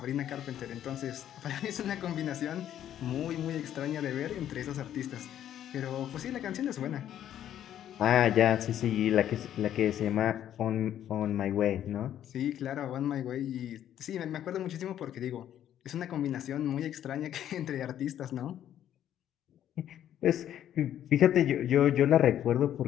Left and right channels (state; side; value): quieter; right; 10.9 dB